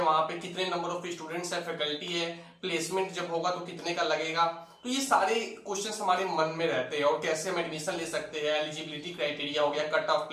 वहां पे कितने नंबर ऑफ स्टूडेंट्स है, फैकल्टी है, प्लेसमेंट जब होगा तो कितने का लगेगा। तो ये सारे क्वेश्चंस हमारे मन में रहते हैं, और कैसे हम एडमिशन ले सकते हैं, एलिजिबिलिटी क्राइटेरिया हो गया, कट ऑफ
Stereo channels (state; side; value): identical; both; correlation 1.00